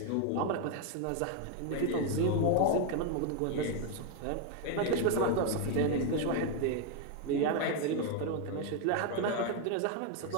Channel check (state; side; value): different; both; correlation 0.01